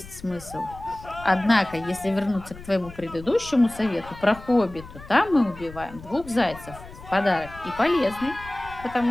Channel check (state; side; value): noise; left; rumble, 17 dB below the sound